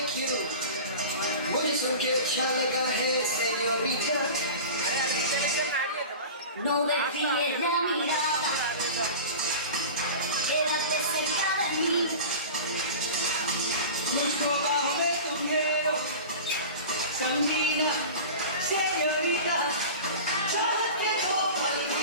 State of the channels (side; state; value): both; inverted; correlation -0.33